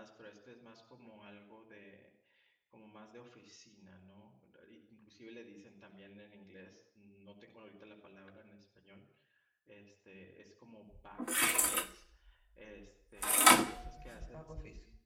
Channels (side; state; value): both; identical; correlation 1.00